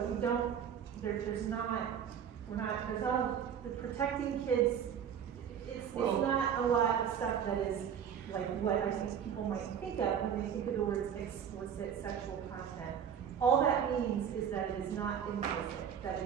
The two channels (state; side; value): quieter; left; 8.3 dB